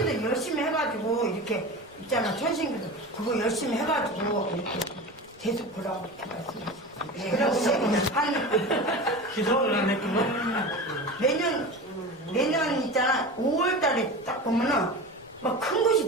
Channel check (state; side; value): noise; right; rumble, 29 dB below the sound